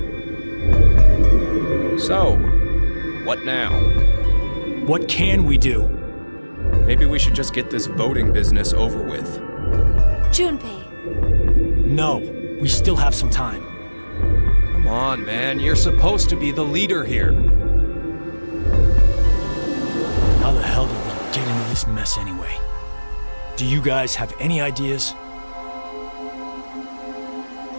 So, what now? What can we do? Maybe we should just get this voting business over with. Junpei. No, we still have some time. Come on, man. You're supposed to be the leader here. How the hell did we get into this mess anyway? Do you guys have any ideas?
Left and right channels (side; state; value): both; inverted; correlation -1.00